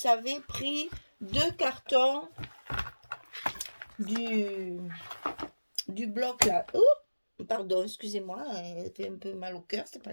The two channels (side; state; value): both; inverted; correlation -1.00